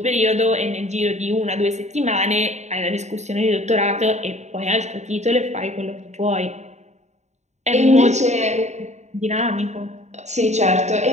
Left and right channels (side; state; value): left; late; 0.33 ms